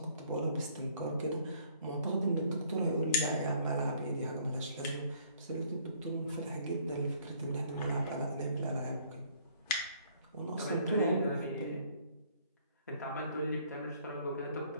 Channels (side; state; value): both; inverted; correlation -0.61